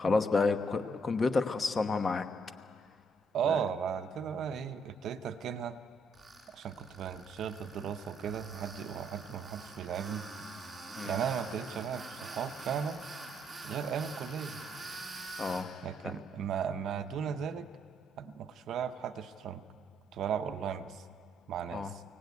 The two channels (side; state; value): both; normal; correlation 0.71